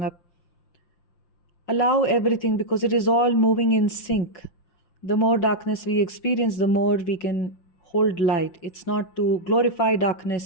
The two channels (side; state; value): right; late; 5.7 ms